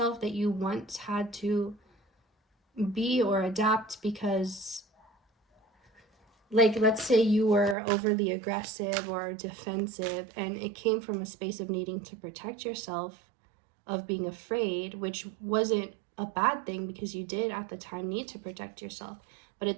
that you once had to be or adapt because, like, let's say you were overly aggressive or defensive, and it came from a space of needing to protect yourself, of being afraid, which wasn't a bad thing because you did at the time need to protect yourself. But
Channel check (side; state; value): left; drops out; at 7.8 s